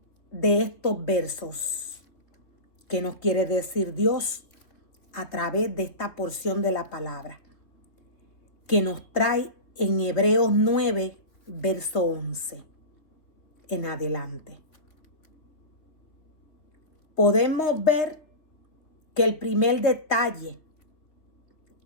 de estos versos? ¿Qué nos quiere decir Dios a través de esta porción de la palabra que nos trae en Hebreos 9, verso 11 en adelante? Podemos ver que el primer detalle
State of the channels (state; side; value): late; right; 3.6 ms